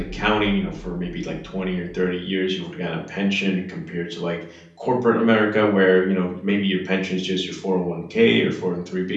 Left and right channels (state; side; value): identical; both; correlation 1.00